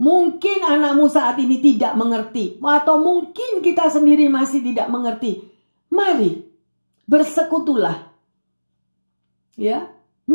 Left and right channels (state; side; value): inverted; both; correlation -1.00